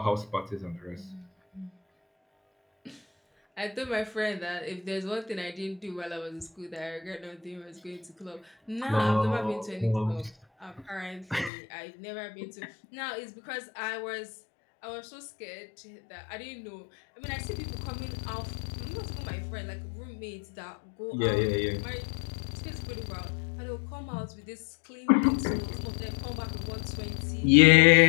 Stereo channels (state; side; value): drops out; right; at 11.5 s